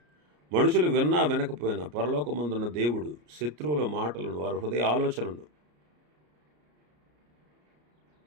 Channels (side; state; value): left; late; 34 ms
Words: మనుషులు విన్నా వినకపోయినా పరలోకమందున్న దేవుడు శత్రువుల మాటలను, వారి హృదయ ఆలోచనలను